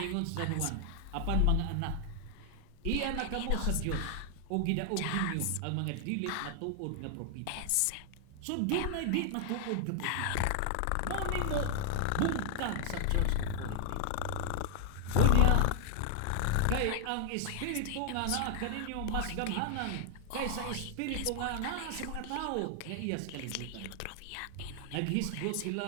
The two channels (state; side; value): different; both; correlation 0.00